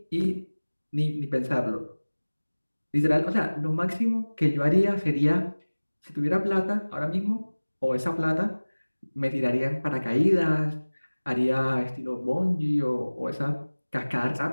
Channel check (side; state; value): both; inverted; correlation -1.00